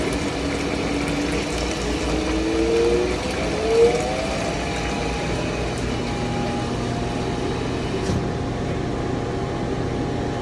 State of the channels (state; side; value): identical; both; correlation 1.00